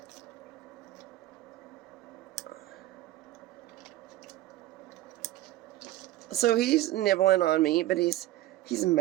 So he's nibbling on me, but he's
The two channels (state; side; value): quieter; left; 15.4 dB